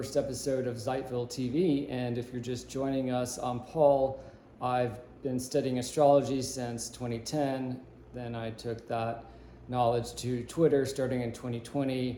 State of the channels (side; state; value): both; identical; correlation 1.00